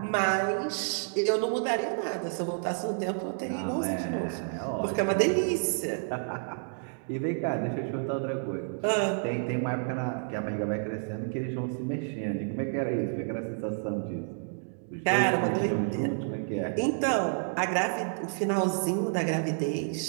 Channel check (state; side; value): silent; left; digital silence